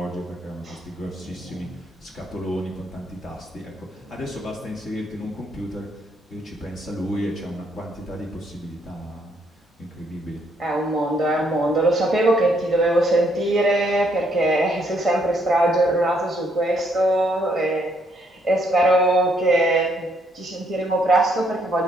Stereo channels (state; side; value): normal; both; correlation 0.71